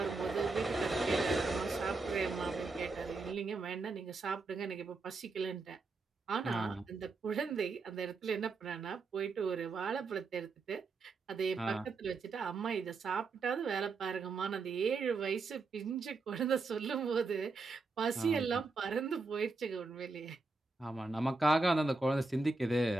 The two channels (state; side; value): quieter; left; 3.8 dB